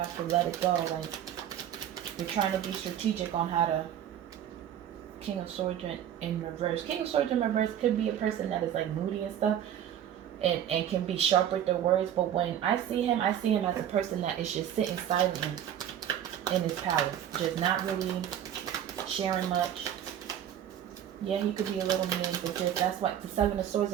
to let it go. Like you're trying to be strategic on how to. King of Swords in reverse. King of Swords in reverse could be a person that is like moody and stuff, and can be sharp with their words. But when I see him as a person that is just sitting silently in his palace, just not really sharing much. Yeah, he could be a little mean, but that's what the Seven of Swords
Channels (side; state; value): left; quieter; 10.3 dB